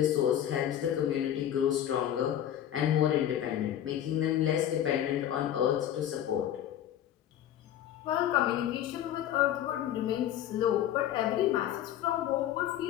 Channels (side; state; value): right; quieter; 11.1 dB